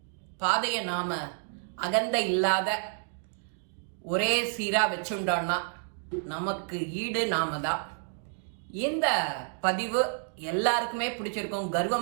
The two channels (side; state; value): left; silent; digital silence